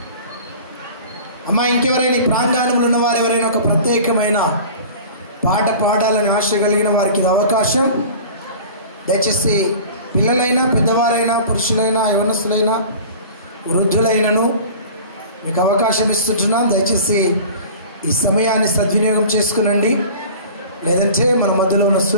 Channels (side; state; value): both; inverted; correlation -0.40